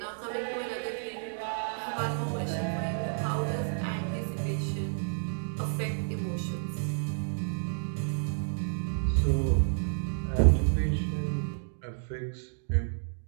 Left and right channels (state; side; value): silent; left; digital silence